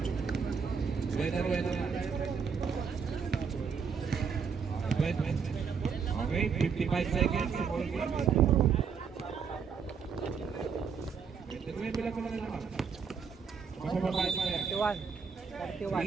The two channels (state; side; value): quieter; left; 6.2 dB